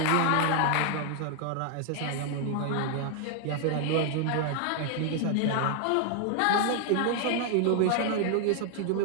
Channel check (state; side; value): different; both; correlation 0.00